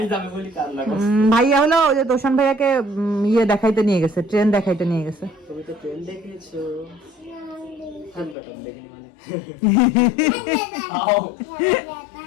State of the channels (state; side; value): drops out; right; at 8.3 s